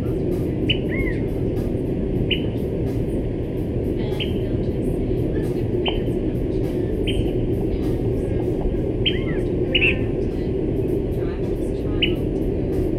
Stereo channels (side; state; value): both; identical; correlation 1.00